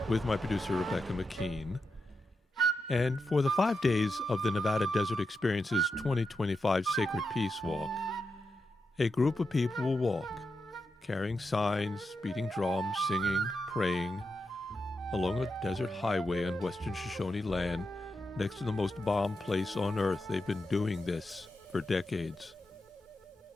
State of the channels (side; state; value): both; normal; correlation 0.87